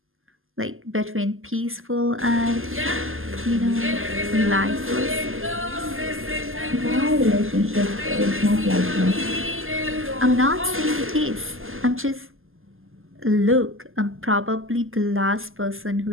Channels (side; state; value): left; late; 0.59 ms